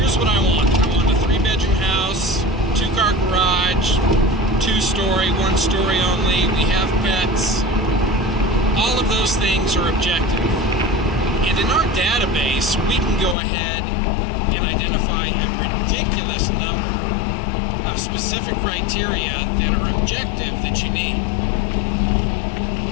what I want. I want a 3-bedroom house, 2-car garage, 2-story, 1-story only. We have pets. All of those things are objective. And in our database, we can go ahead and identify a ridiculous number of specific criteria that are objective that you need.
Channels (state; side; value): drops out; right; at 13.4 s